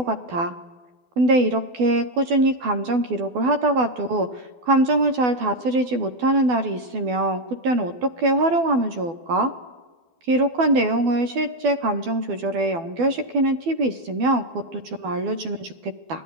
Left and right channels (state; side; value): late; left; 12 ms